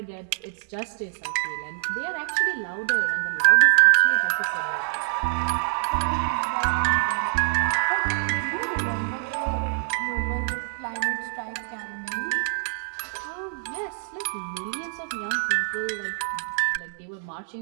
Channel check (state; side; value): silent; left; digital silence